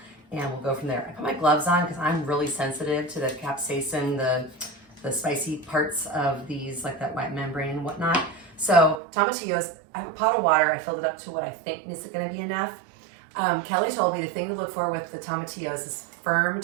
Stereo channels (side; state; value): left; drops out; at 9.0 s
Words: And we'll go from there. I put my gloves on because I'm really sensitive to the capsaicin, the spicy parts of these, like that white membrane and whatnot. So tomatillos, I have a pot of water. I filled it up to what I think is going to be enough. Kelly told me the thing to look for with the tomatillos is firm